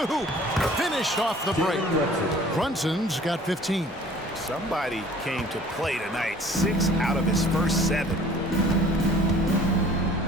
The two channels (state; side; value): normal; both; correlation 0.50